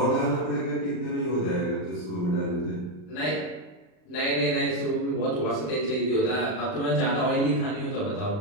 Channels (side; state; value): right; late; 39 ms